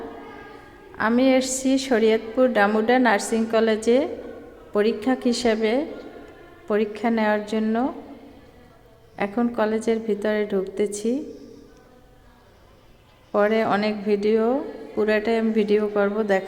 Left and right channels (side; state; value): both; identical; correlation 1.00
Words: আমি এসেছি শরীয়তপুর ডামুডা নার্সিং কলেজে পরীক্ষক হিসেবে পরীক্ষা নেওয়ার জন্য। এখন কলেজের ভিতরে ঢুকতেছি, পরে অনেক পুরাটাই আমি ভিডিও করব,